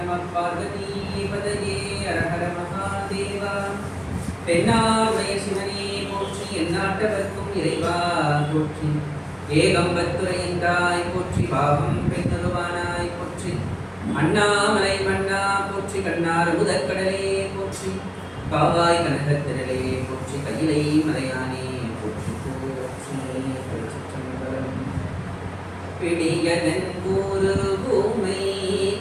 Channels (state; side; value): identical; both; correlation 1.00